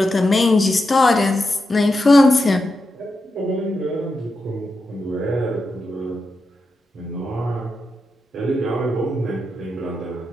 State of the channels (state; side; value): normal; both; correlation 0.87